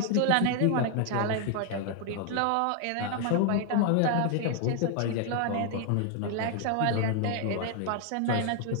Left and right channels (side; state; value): both; different; correlation 0.00